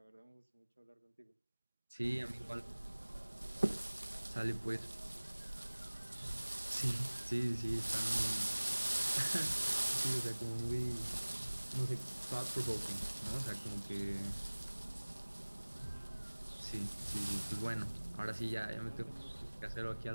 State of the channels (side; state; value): both; inverted; correlation -1.00